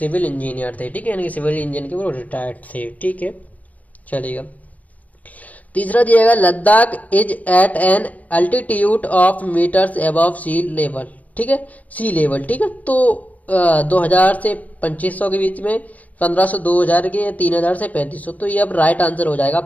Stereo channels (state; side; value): late; right; 0.075 ms